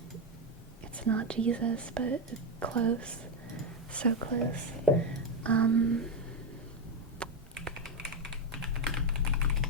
It's not Jesus, but close. So close.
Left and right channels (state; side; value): normal; both; correlation 0.07